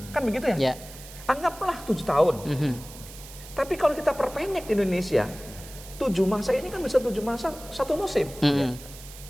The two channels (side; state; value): right; noise; hiss, 16 dB below the sound